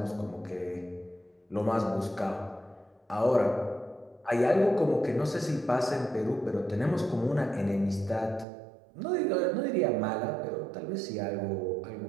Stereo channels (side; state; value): left; drops out; at 8.5 s